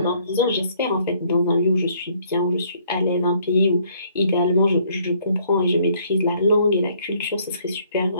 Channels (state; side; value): inverted; both; correlation -0.64